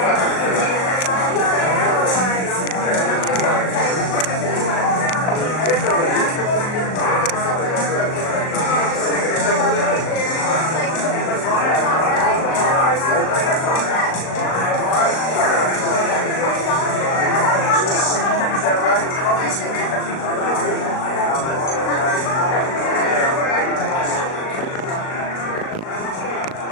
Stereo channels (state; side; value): late; right; 38 ms